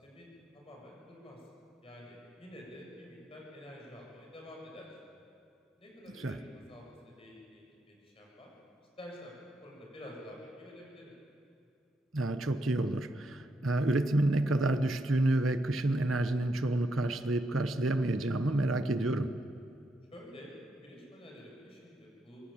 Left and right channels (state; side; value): normal; both; correlation 0.80